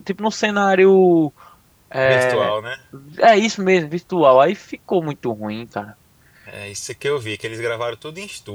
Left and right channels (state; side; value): identical; both; correlation 1.00